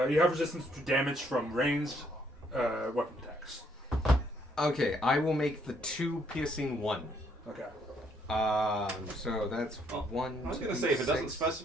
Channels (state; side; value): normal; both; correlation 0.69